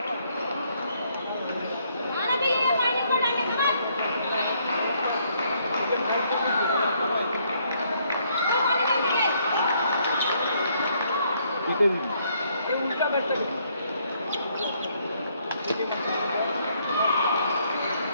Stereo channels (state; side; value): inverted; both; correlation -0.70